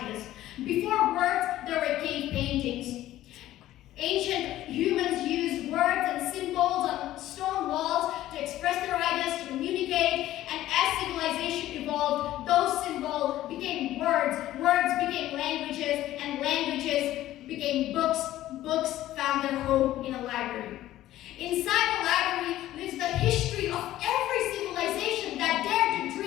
Before words, there were cave paintings. Ancient humans used words and symbols on stone walls to express their ideas, to communicate, and as civilization evolved, those symbols became words, words became languages, and languages became books, books found their home in a library. Inside the library lives the history of every civilization that dared to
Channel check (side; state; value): right; quieter; 14.3 dB